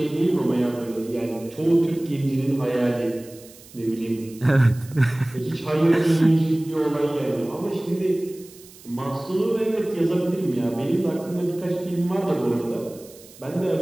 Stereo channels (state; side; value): noise; right; hiss, 22 dB below the sound